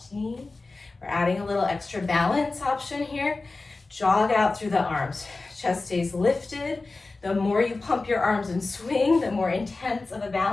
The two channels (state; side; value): quieter; right; 3.5 dB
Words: knee. We're adding a little extra balance option here. Jog out through the arms. Chest stays lifted. The more you pump your arms and swing, the more intense of a